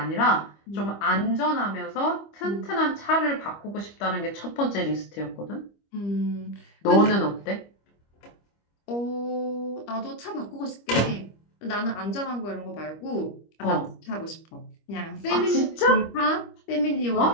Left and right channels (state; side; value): late; right; 25 ms